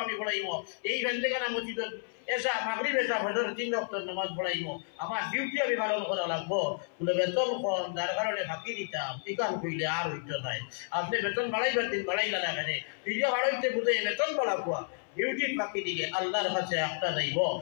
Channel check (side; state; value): right; silent; 57 dB below the other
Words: আমি পড়াইব, এই ভেন্দেখানা মসজিদ এসা মাগরিব এসা ফজর ৩ ওয়াক্ত নামাজ পড়াইব, আমার ডিউটি আমি পালন করা লাগবো। বলে বেতন কম যার কারণে ফাঁকি দিতাম, টিকান কইলে আর হইতো নাই, আপনি বেতন বাড়াইবার দিন বাড়াইলা না কেন, ফিরিয়া বাড়াইতে বুঝে বেতন বাড়াবো, ডিউটির ফাঁকি দিলে আল্লাহর কাছে একটা যাইব,